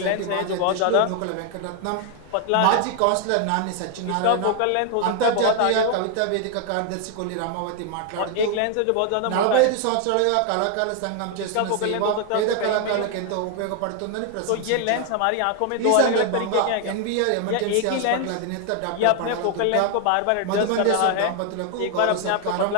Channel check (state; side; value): different; both; correlation 0.00